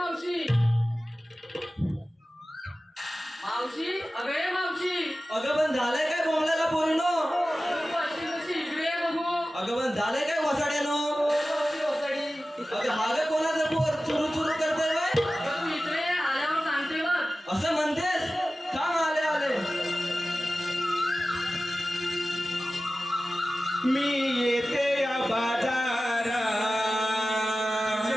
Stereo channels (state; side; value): normal; both; correlation 0.95